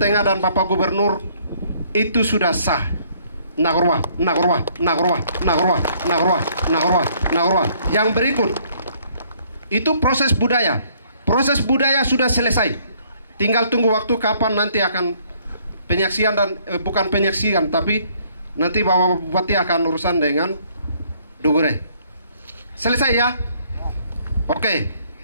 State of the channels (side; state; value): both; inverted; correlation -0.63